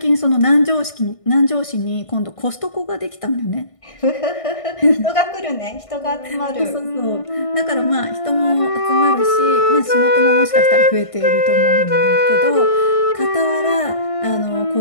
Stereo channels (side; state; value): right; late; 1.5 ms